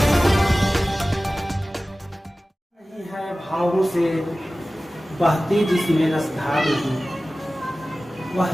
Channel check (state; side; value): normal; both; correlation 0.97